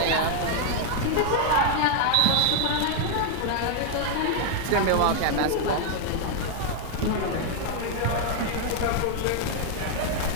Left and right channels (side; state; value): both; different; correlation 0.00